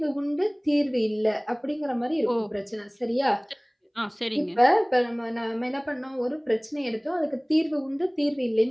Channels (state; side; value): identical; both; correlation 1.00